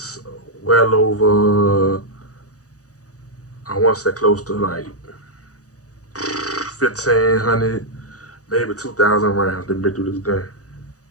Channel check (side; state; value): right; late; 0.67 ms